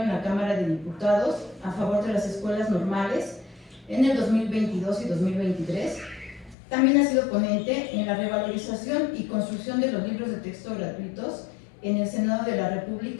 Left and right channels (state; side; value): drops out; right; at 6.6 s